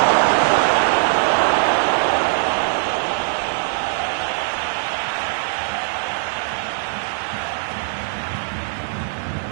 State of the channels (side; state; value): left; silent; digital silence